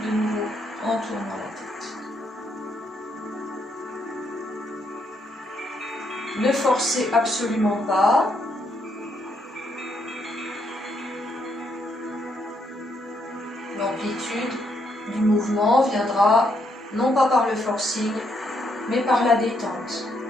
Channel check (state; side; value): normal; both; correlation 0.75